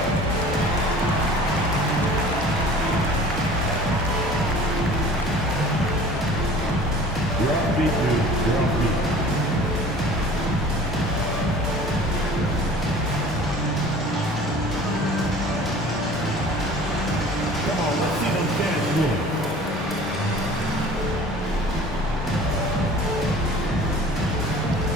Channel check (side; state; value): both; normal; correlation 0.45